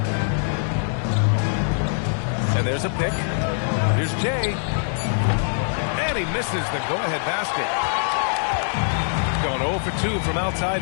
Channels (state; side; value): silent; right; digital silence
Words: And there's a pick. Here's Jay. And he misses the go-ahead basket. Going 0 for 2 from